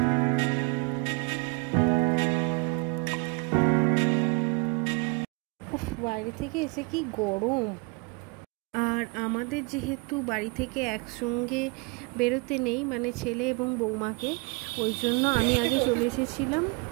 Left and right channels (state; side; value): quieter; left; 30.8 dB